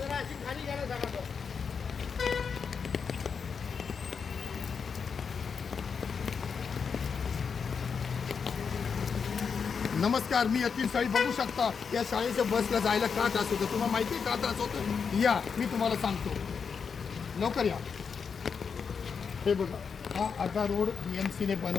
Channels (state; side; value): quieter; right; 6.0 dB